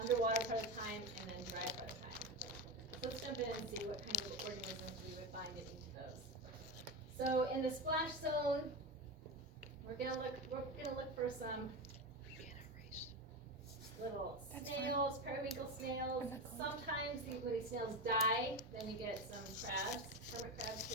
part of the time and then dry part of the time. So let's jump in and see what kind of organisms we would find in each of those. So in the splash zone, we're gonna look for some little snails, periwinkle snails. Sometimes when these snails die, then you get some crabs, hermit crabs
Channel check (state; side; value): normal; both; correlation 0.18